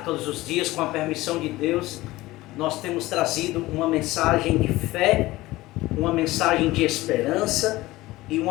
todos os dias, com a permissão de Deus, nós temos trazido uma mensagem de fé, uma mensagem de esperança e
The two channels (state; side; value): quieter; right; 18.4 dB